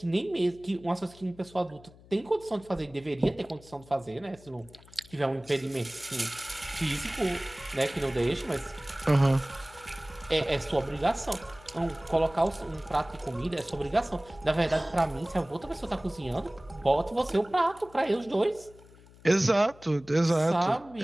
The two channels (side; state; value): left; noise; hum, 23 dB below the sound